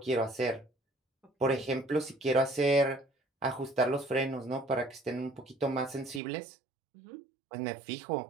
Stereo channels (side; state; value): left; drops out; at 6.2 s